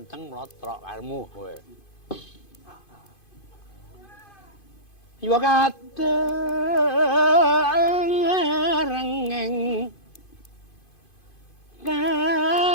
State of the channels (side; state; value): right; late; 2.5 ms